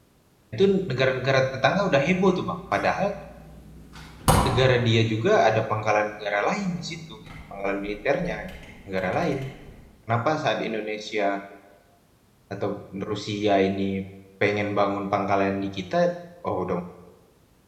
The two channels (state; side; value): identical; both; correlation 1.00